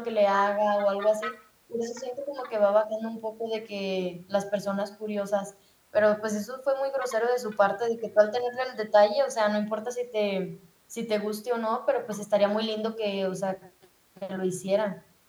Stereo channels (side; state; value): both; identical; correlation 1.00